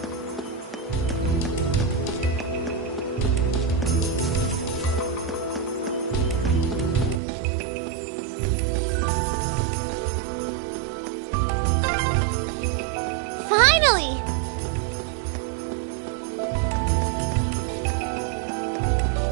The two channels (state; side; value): drops out; left; at 7.2 s